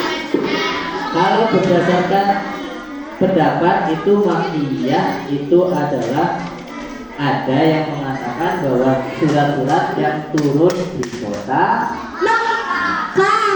Kalau berdasarkan pendapat itu Makkiyah itu adalah ada yang mengatakan bahwa surat-surat yang turun di kota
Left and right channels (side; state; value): both; identical; correlation 1.00